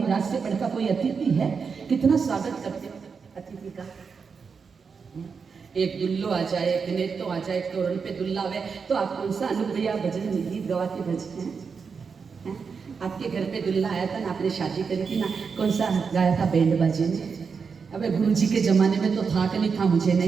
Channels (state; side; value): quieter; left; 5.6 dB